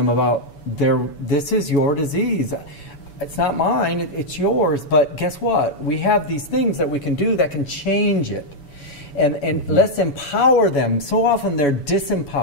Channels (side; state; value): right; late; 7.0 ms